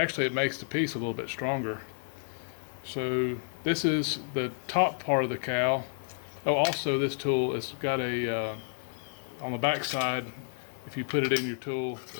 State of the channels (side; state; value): right; silent; digital silence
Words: it makes the piece a little bit stronger. So this is the top part of the cowl. Oh, also this tool has got a, on the back side, if you put it in your tool